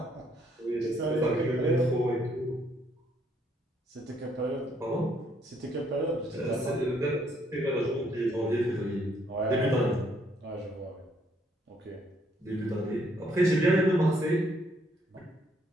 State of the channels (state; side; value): normal; both; correlation 0.69